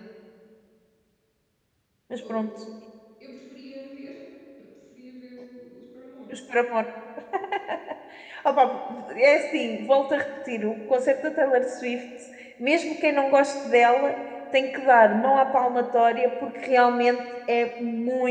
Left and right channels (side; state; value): both; identical; correlation 1.00